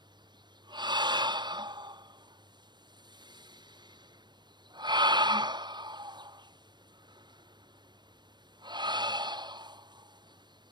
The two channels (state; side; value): late; left; 0.21 ms